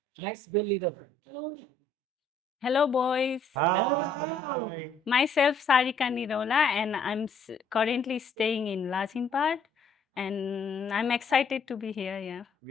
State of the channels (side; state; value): right; quieter; 3.2 dB